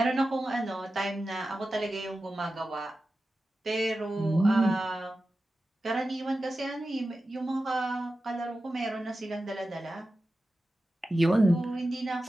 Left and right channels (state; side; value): normal; both; correlation 0.93